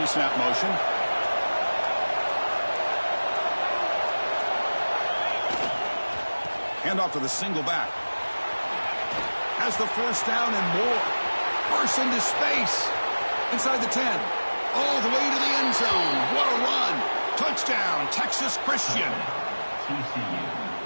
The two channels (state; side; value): inverted; both; correlation -1.00